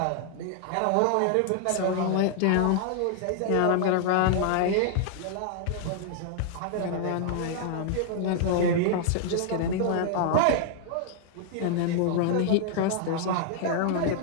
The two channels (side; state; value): both; different; correlation -0.01